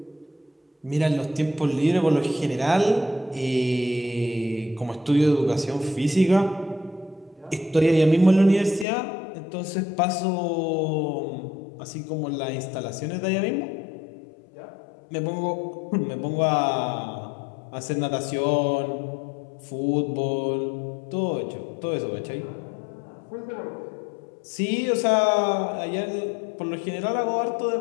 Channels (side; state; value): right; drops out; at 8.8 s